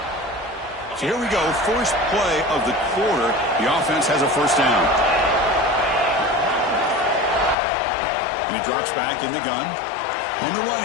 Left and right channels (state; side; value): drops out; right; at 7.6 s